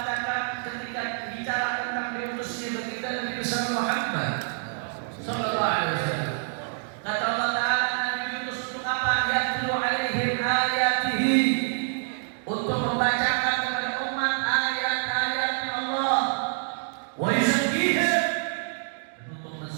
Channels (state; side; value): silent; left; digital silence